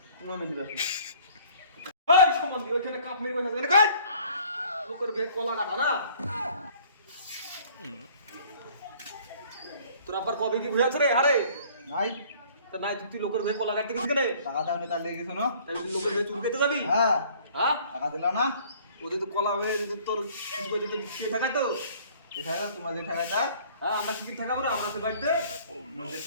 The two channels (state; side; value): inverted; both; correlation -0.54